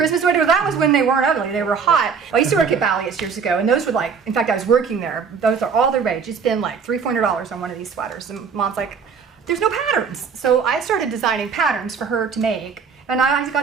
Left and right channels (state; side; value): quieter; left; 6.0 dB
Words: sweaters. That was when they weren't ugly, they were hot. I used to work at Ballius years ago, and those were like, in fact, I was working there. Those are all the rage. It's been like $300-$400 on one of these sweaters. And Mom's like, "There's no patterns." So I started designing patterns for her to make, and I